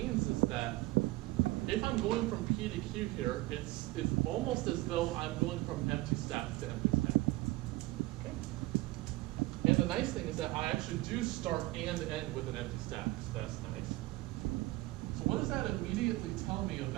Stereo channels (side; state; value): left; quieter; 19.8 dB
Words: is that if I'm going from P to Q here, it's almost as though I'm going from empty stack to empty stack. Okay. And the nice thing is that I actually do start and end with an empty stack, so that's nice. So what does that immediately tell me